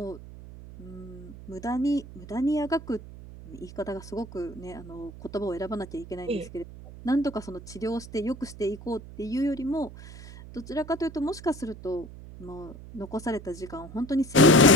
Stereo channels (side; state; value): right; noise; hum, 15 dB below the sound